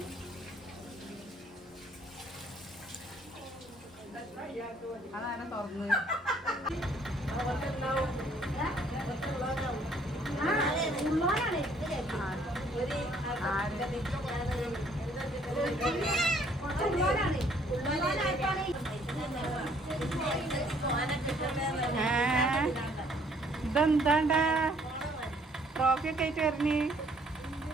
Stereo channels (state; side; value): normal; both; correlation 0.62